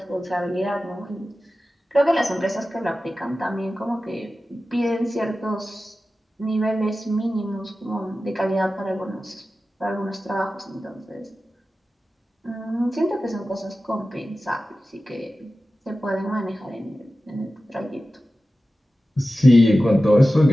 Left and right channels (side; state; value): both; normal; correlation 0.95